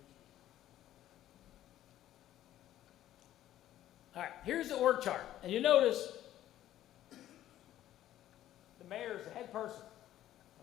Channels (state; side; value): quieter; right; 12.9 dB